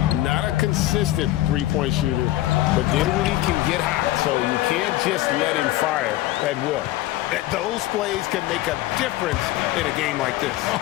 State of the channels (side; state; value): right; quieter; 15.9 dB